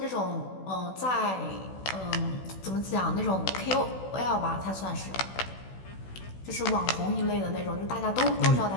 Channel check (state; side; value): late; right; 16 ms